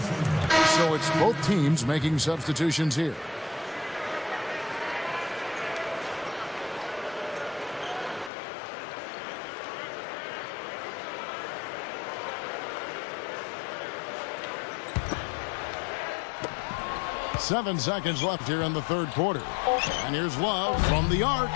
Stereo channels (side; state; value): right; drops out; at 8.3 s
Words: So it's both teams making substitutions here. Seven seconds left here in the third quarter. And here's Love from the arc.